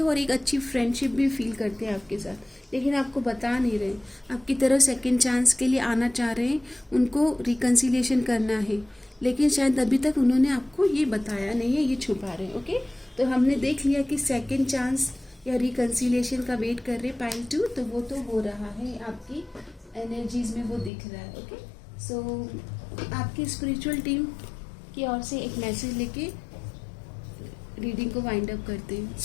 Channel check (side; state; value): right; drops out; at 20.9 s